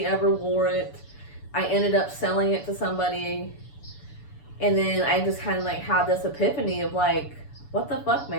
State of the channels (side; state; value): right; late; 6.9 ms